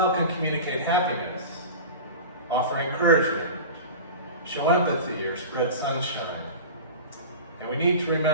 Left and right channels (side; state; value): both; inverted; correlation -0.32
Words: can communicate happiness, offer encouragement, show empathy, or spread sunshine. And we need to